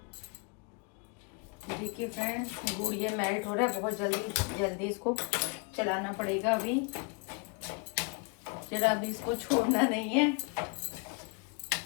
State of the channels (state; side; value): quieter; right; 33.5 dB